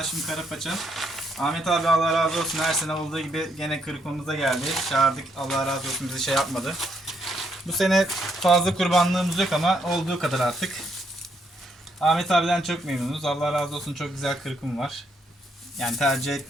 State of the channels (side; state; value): both; normal; correlation 0.74